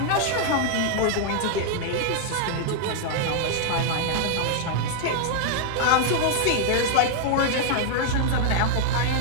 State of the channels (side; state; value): both; different; correlation 0.00